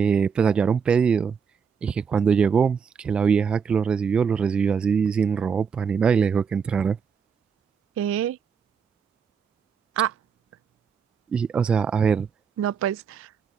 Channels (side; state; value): left; quieter; 6.4 dB